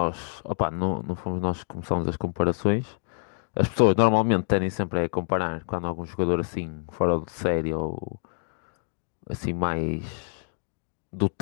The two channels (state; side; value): silent; right; digital silence